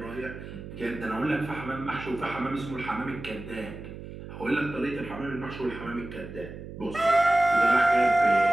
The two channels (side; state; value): right; noise; hum, 12 dB below the sound